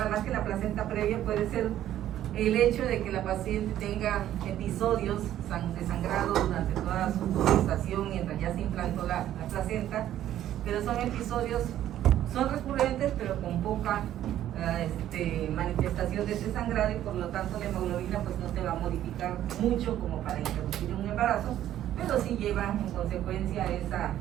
más que la placenta previa, puede ser el hecho de que la paciente tenga episodios de sangrado durante toda su gestación mientras ya se implantó la placenta, pero son episodios, son recurrentes, pero con poca manifestación de ese sangrado, y por lo tanto la hemoglobina pues no se va a modificar mucho como para introducir un embarazo, pero sí lleva en consecuencia esa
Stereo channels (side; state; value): left; quieter; 12.1 dB